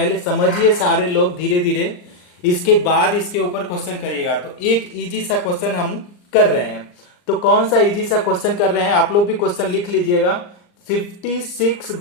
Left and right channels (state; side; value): late; right; 39 ms